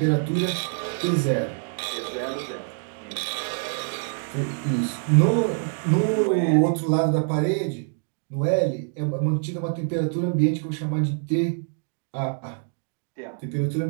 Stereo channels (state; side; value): silent; left; 62 dB below the other